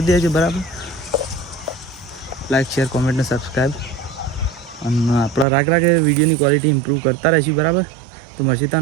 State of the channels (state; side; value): drops out; left; at 5.5 s